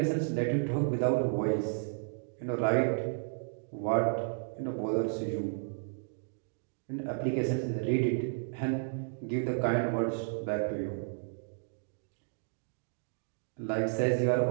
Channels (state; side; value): silent; left; digital silence